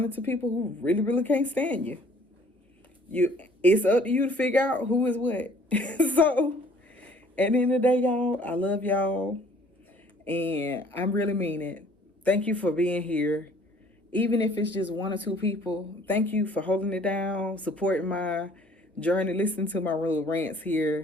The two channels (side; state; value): both; normal; correlation 0.56